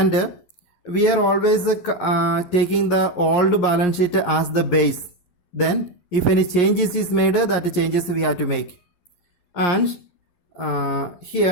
we are always taking the old balance sheet as the base. Then if any changes is made, that changes we have to make. And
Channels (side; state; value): right; late; 11 ms